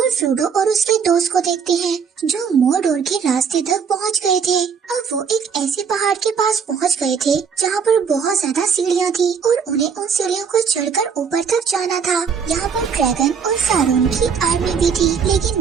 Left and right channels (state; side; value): quieter; left; 6.5 dB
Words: फ्रोडो और उसके दोस्त को देखते हैं जो मोरडोर के रास्ते तक पहुंच गए थे। अब वो एक ऐसे पहाड़ के पास पहुंच गए थे जहाँ पर बहुत ज्यादा सीढ़ियाँ थी और उन्हें उन सीढ़ियों को चढ़कर ऊपर तक जाना था। यहाँ पर ड्रैगन और सारोन की आर्मी भी थी,